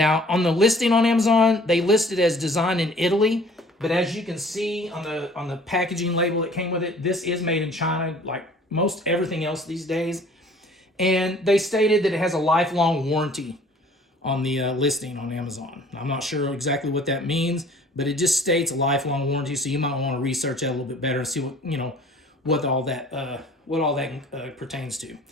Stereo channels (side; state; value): both; normal; correlation 0.52